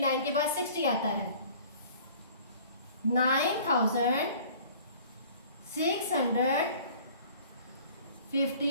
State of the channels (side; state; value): both; inverted; correlation -0.49